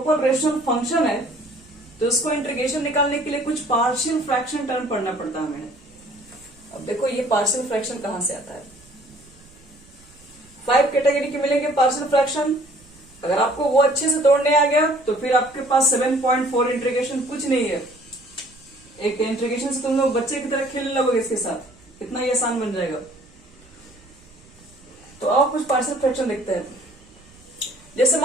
रेशनल फंक्शन है तो उसको इंटीग्रेशन निकालने के लिए कुछ पार्शियल फ्रैक्शन टर्म पढ़ना पड़ता है हमें। अब देखो ये पार्शियल फ्रैक्शन कहां से आता है, 5 कैटेगरी के मिलेंगे पार्शियल फ्रैक्शन। अगर आपको वो अच्छे से तोड़ने आ गया तो फिर आपके पास 7.4 इंटीग्रेशन कुछ नहीं है। एक इंटीग्रेशन से तुम लोग बच्चे की तरह खेलने लगोगे इसके साथ, इतना ही आसान बन जाएगा। तो अब कुछ पार्शियल फ्रैक्शन देखते हैं। जैसे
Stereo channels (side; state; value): right; noise; rumble, 27 dB below the sound